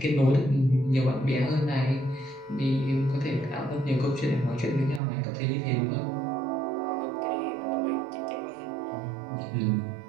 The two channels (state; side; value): drops out; left; at 5.0 s